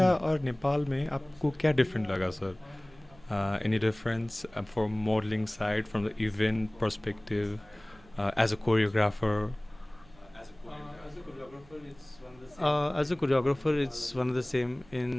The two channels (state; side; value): noise; right; hum, 26 dB below the sound